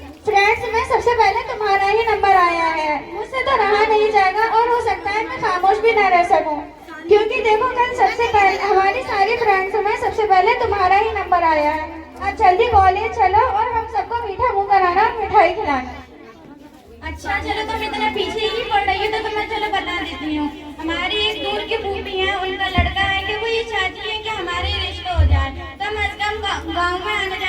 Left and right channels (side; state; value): both; identical; correlation 1.00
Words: फ्रेंड्स में सबसे पहले तुम्हारा ही नंबर आया है। मुझसे तो रहा नहीं जाएगा और हो सकता है मैं खामोश भी ना रह सकूं, क्योंकि देखो कल सबसे पहले हमारी सारी फ्रेंड्स में सबसे पहले तुम्हारा ही नंबर आया है। अब जल्दी कॉलेज चलो और हम सबको मीठा मुंह कराना और मिठाई खिलाना। अच्छा चलो, तुम इतना पीछे ही पड़ रही हो तो तुम्हें चलो बता देती हूँ। हमारी एक दूर की फूफी है, उनका लड़का है कि वो ये चाहती है कि हमारे रिश्ते हो जाए, कम अज कम गाँव में आना